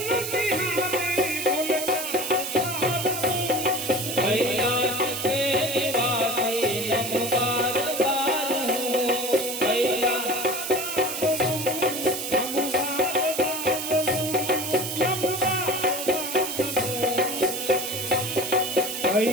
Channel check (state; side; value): noise; right; hiss, 5 dB below the sound